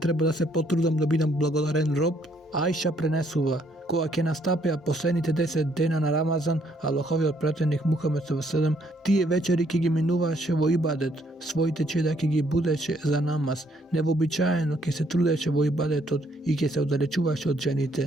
да се потрудам да бидам благодарен роб? Аиша пренесува, кога ќе настапеа последните 10 дена на Рамазан, Аллаховиот пратеник Мухамед ﷺ, тие вечери ќе ги минуваше во ибадет, своите чеда ќе ги будеше за намаз, невообичаено ќе се трудеше во ибадетот и ќе се оддалечуваше од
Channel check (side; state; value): both; normal; correlation 0.69